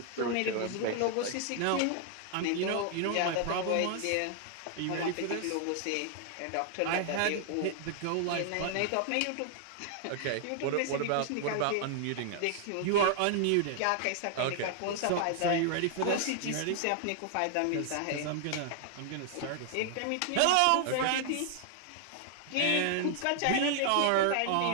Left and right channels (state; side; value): different; both; correlation 0.00